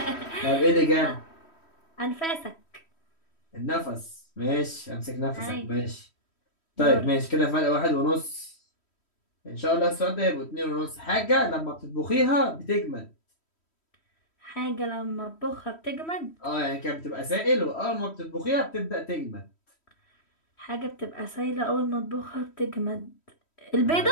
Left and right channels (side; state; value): right; late; 3.1 ms